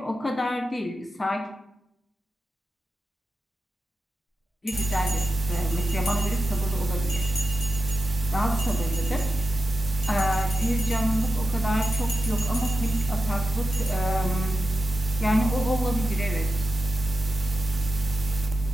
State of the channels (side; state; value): both; normal; correlation 0.90